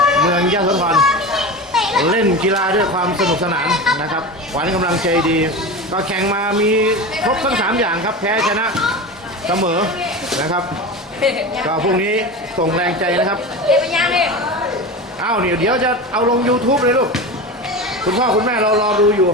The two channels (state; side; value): normal; both; correlation 0.27